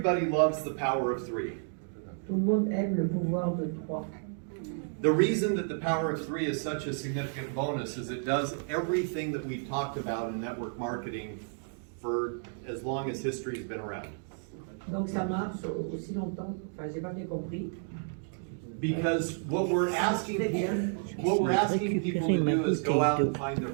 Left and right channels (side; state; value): left; silent; 57 dB below the other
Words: loves the power of 3. Tout le monde aime le pouvoir de 3. The reason that the power of 3 is such a significant bonus is it does everything that we've talked about in network marketing for as long as history has been around. Donc ça marche aussi longtemps, enfin j'ai pas bien compris. Because what we're asking people to do is go out and find their